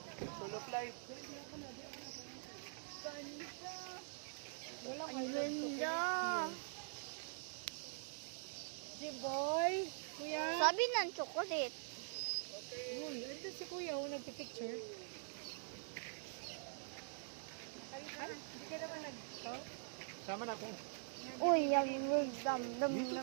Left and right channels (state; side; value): silent; left; digital silence